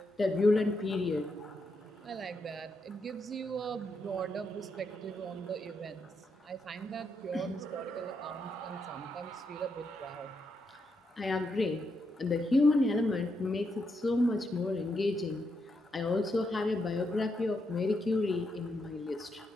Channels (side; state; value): both; normal; correlation 0.81